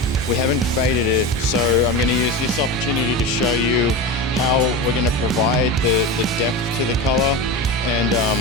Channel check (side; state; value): both; normal; correlation 0.24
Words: we haven't faded it. So I'm going to use this opportunity to show you how we're going to provide the depth to the color, and